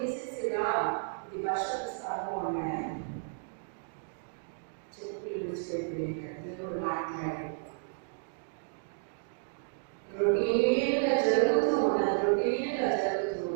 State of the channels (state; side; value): silent; left; digital silence